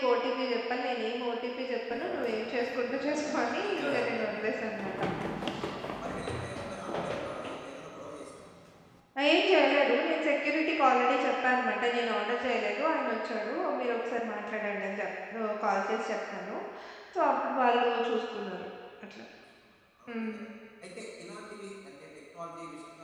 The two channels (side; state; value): both; identical; correlation 1.00